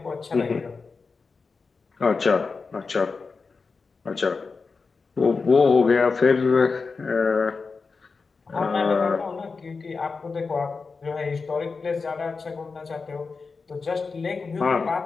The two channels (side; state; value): right; quieter; 4.6 dB